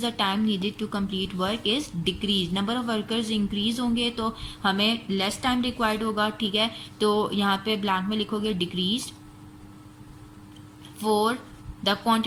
the time needed to complete work is decrease. Number of workers increase होंगे तो हमें लेस टाइम रिक्वायर्ड होगा, ठीक है। तो यहाँ पे ब्लैंक में लिखोगे decrease. 4, the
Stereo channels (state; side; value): identical; both; correlation 1.00